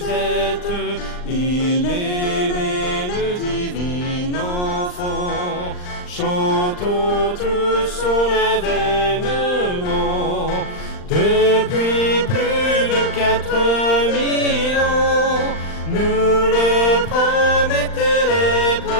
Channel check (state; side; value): late; right; 39 ms